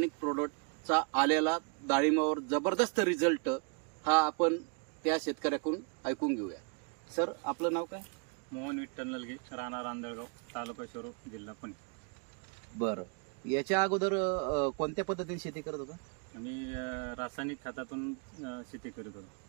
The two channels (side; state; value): left; quieter; 36.7 dB